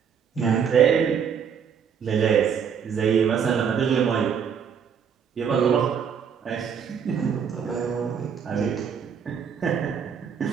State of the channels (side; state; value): left; quieter; 7.3 dB